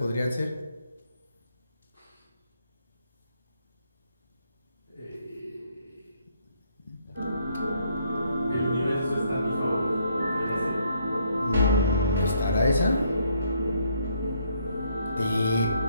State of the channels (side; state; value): both; inverted; correlation -0.70